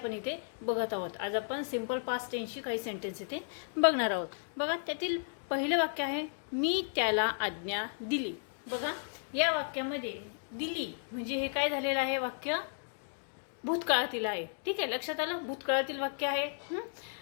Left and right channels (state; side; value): silent; right; digital silence